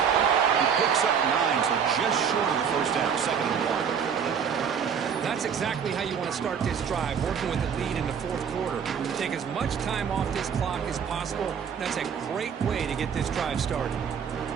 He picks up 9, so just short of the 1st down, 2nd and 1. That's exactly how you want to start this drive, working with the lead in the 4th quarter. Take as much time off this clock as possible. That's a great way to get this drive started.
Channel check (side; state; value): left; quieter; 7.3 dB